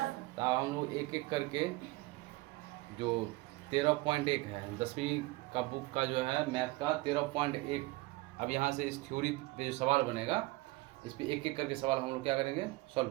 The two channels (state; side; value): quieter; left; 21.5 dB